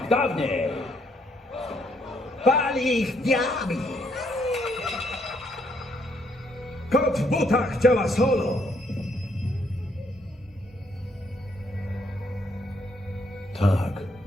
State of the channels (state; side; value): normal; both; correlation 0.71